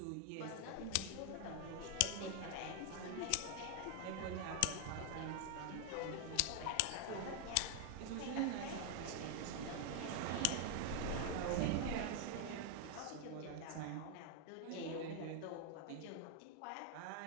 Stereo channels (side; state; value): both; different; correlation 0.00